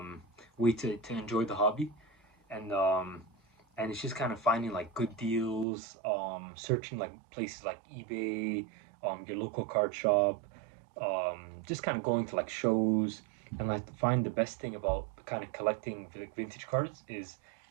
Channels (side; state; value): left; drops out; at 5.7 s